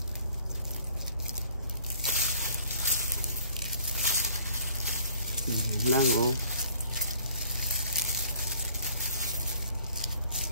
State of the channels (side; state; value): both; inverted; correlation -0.56